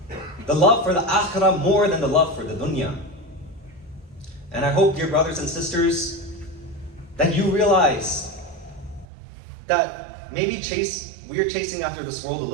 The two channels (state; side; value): drops out; left; at 9.1 s